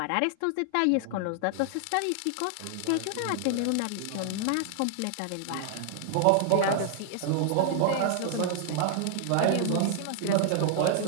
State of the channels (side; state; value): both; different; correlation 0.00